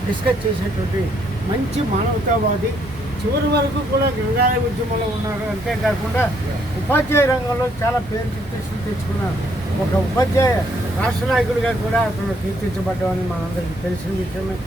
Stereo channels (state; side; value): normal; both; correlation 0.70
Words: డిస్కస్ చేసేటువంటి మంచి మానవతావాది. చివరి వరకు కూడా గ్రంథాలయ ఉద్యమంలో ఉన్నారు. అంతేకాకుండా ఉపాధ్యాయ రంగంలో చాలా పేరు ప్రతిష్టలు తెచ్చుకున్నారు. ఒక ఉపాధ్యాయ రాష్ట్ర నాయకుడిగా కూడా అతను కీర్తించబడ్డామని మనందరికీ తెలిసిన విషయమే.